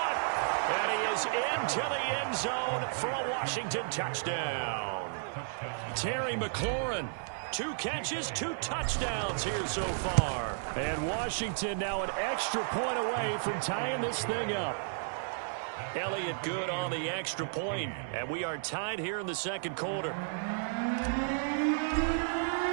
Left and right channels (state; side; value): silent; left; 56 dB below the other